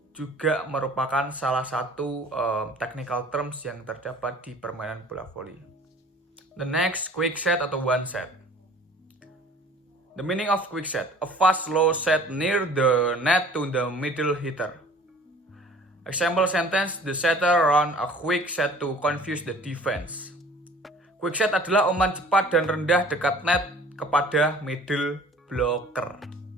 juga merupakan salah satu technical terms yang terdapat di permainan bola voli. The next, quick set atau one set. The meaning of quick set, a fast low set near the net to the middle hitter. Example sentence, the setter run a quick set to confuse the defense. Quick set adalah umpan cepat dan rendah dekat net kepada middle blocker.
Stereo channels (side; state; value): both; normal; correlation 0.49